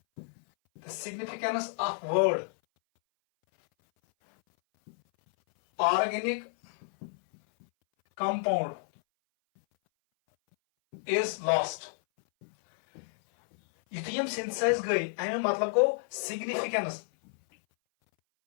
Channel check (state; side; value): silent; right; 58 dB below the other